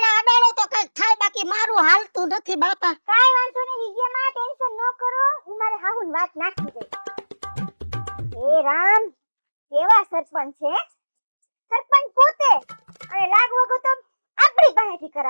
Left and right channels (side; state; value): both; inverted; correlation -1.00